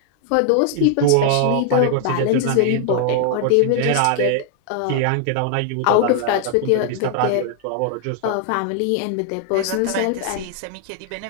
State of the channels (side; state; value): both; different; correlation 0.00